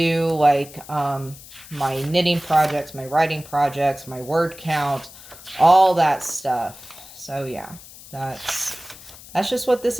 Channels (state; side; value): noise; left; hiss, 18 dB below the sound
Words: like my knitting projects, my writing projects, my word count, all that stuff. So yeah, that's just what this